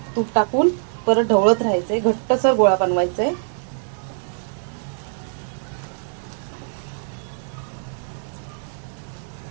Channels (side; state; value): left; silent; digital silence